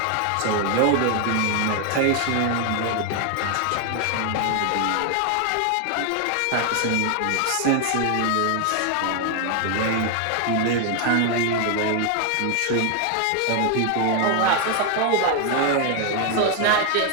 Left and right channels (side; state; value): both; different; correlation 0.01